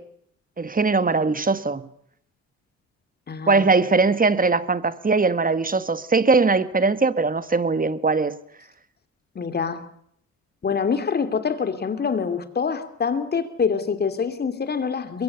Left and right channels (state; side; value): normal; both; correlation 0.24